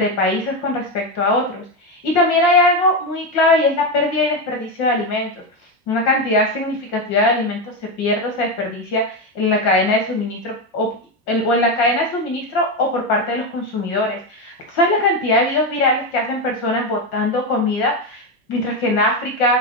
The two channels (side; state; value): both; normal; correlation 0.11